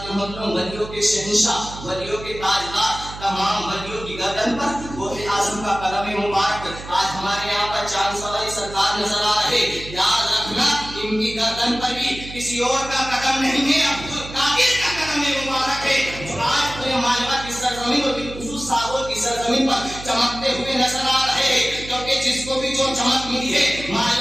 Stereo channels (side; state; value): right; noise; hum, 13 dB below the sound